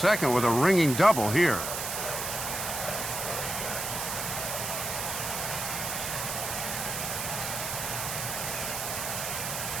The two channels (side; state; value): right; noise; hiss, 3 dB below the sound